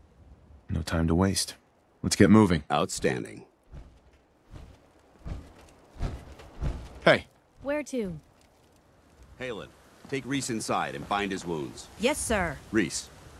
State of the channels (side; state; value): both; identical; correlation 1.00